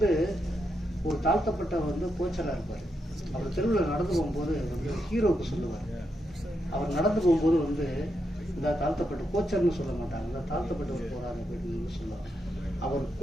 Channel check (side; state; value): both; normal; correlation 0.83